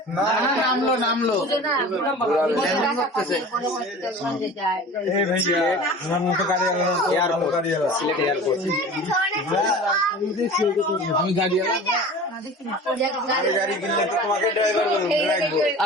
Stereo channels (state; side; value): normal; both; correlation 0.39